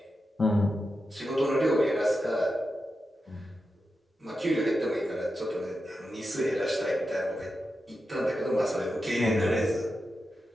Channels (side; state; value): both; normal; correlation 0.89